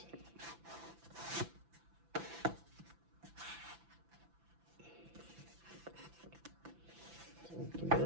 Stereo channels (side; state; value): left; late; 5.9 ms